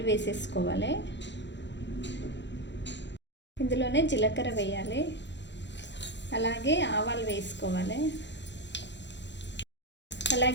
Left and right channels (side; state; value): right; late; 0.52 ms